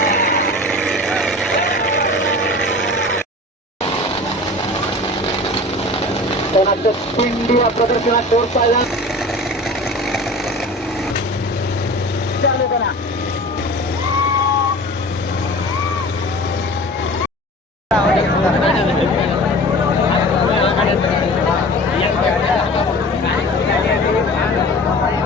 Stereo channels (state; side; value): normal; both; correlation 0.39